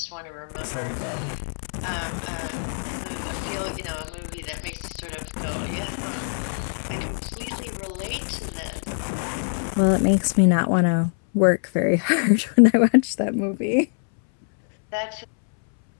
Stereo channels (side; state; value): right; silent; 62 dB below the other